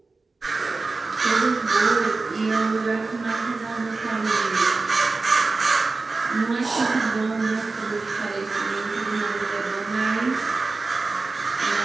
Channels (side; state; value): left; quieter; 3.8 dB